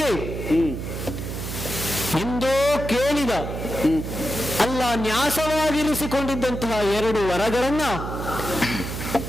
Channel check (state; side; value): noise; right; hum, 6 dB below the sound